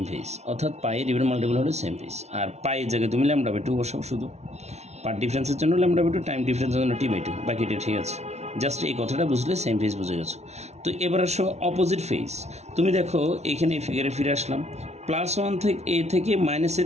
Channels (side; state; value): left; late; 0.32 ms